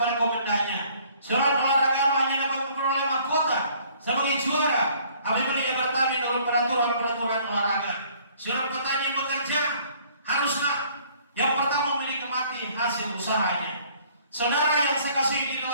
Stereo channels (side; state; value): both; inverted; correlation -0.58